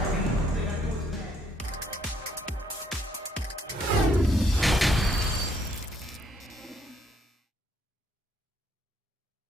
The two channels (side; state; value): both; normal; correlation 0.68